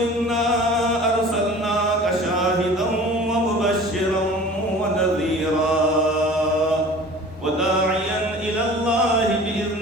إنا أرسلناك شاهدا ومبشرا ونذيرا وداعيا إلى الله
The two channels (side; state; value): both; normal; correlation 0.43